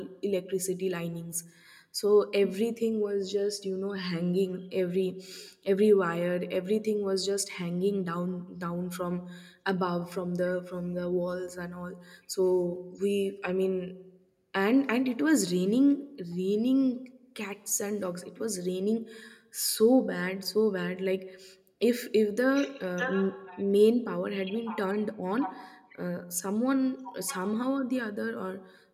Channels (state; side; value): identical; both; correlation 1.00